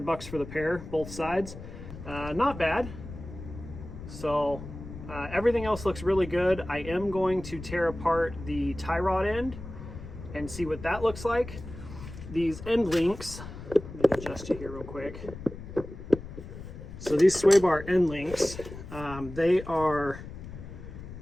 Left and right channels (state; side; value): noise; left; rumble, 12 dB below the sound